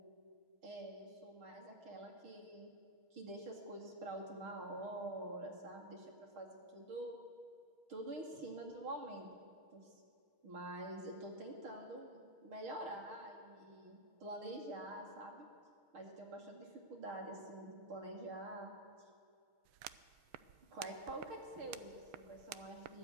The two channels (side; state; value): left; late; 6.3 ms